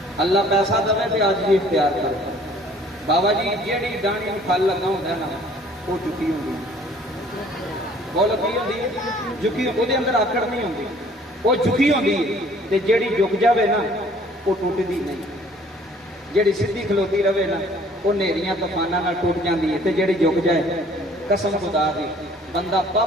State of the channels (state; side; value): normal; both; correlation 0.56